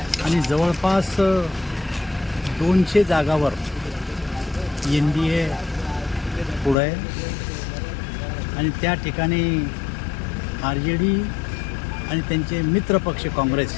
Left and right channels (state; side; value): drops out; right; at 6.8 s